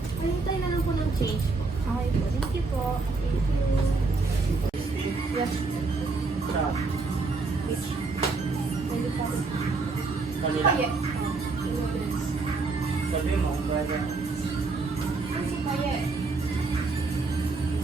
Pahintay na lang po ng change po. Okay po. Thank you po. Thank you. Yes. Sa Pwede po. kanila. Paye. Sabi mo, brother. Ano si Paye?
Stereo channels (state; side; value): quieter; left; 3.9 dB